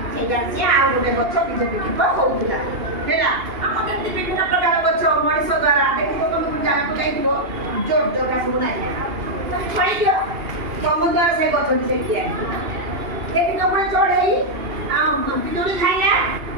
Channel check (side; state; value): left; late; 2.8 ms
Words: ସେଇଟା ସିଏ ଆଉ ଗୋଟେ ଗଛ ବିକ୍ଷେପ ହଉଥିଲା। ହେଲା, ଆମର ଯେମିତି ବିଭିନ୍ନ ପ୍ରକାର ଗଛ ମଣିଷ ଦ୍ୱାରା ଦେଖିବ, ତମକୁ ଜାଗାକୁ ଯାଇଥିବ ଜୋର ଜୋରଟା ସବୁ ନାହିଁ, ତମେ ଛାଡ଼ିଦିଅ, ତମ ଦ୍ୱାରା ସେ ଗଛଟି ସେଠି ଆସିବ। ଦେଖିଛ ପୁଣି ଚଢ଼େଇ ପିଜୁଳି ଖାଇଲା,